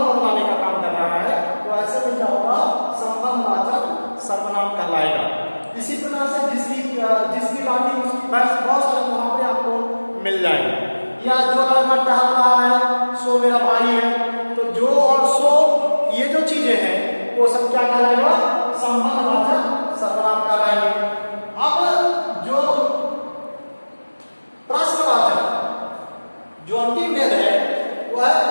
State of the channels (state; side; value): inverted; both; correlation -1.00